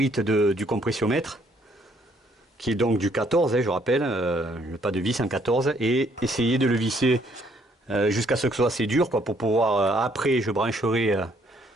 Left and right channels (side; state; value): both; normal; correlation 0.67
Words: du compressiomètre, qui est donc du 14, hein, je rappelle, le pas de vis en 14, et essayer de le visser jusqu'à ce que ce soit assez dur, quoi, pour pouvoir, après je brancherai